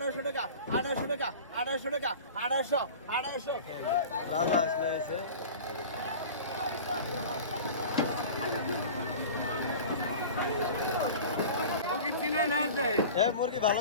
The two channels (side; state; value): both; inverted; correlation -0.37